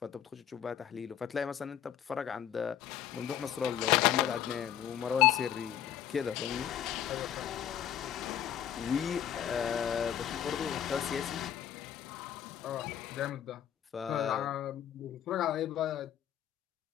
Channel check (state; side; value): quieter; right; 10.2 dB